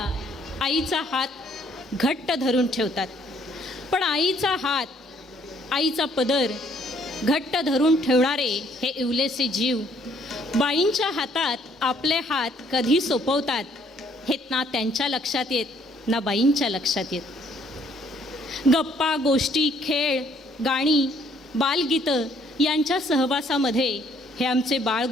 आईचा हात घट्ट धरून ठेवतात, पण आईचा हात, आईचा पदर घट्ट धरून ठेवणारे हे इवलेसे जीव बाईंच्या हातात आपले हात कधी सोपवतात हे ना त्यांच्या लक्षात येत ना बाईंच्या लक्षात येत. गप्पा गोष्टी, खेळ, गाणी, बालगीतं यांच्या सहवासामध्ये हे आमचे बाळ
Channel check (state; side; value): normal; both; correlation 0.64